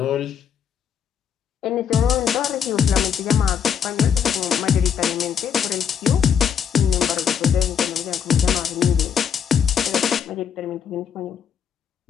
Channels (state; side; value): quieter; right; 7.9 dB